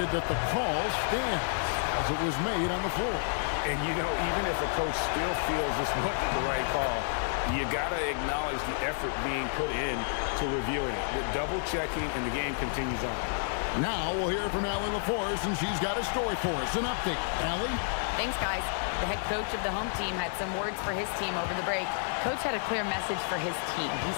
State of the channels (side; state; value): right; silent; digital silence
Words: that the call stands as it was made on the floor. And, you know, even if a coach still feels this wasn't the right call, you got to acknowledge the effort being put in to reviewing it. With double-checking, and the game continues on. Now we'll hear from Allie LaForce, and she's got a story for us. An update. Allie? Thanks, guys. The head coach of the home team had some words for his team over the break. Coach had a clear message for his team. He